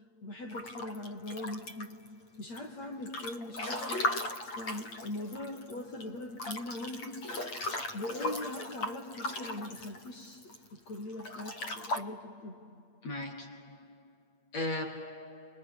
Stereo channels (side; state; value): right; late; 8.6 ms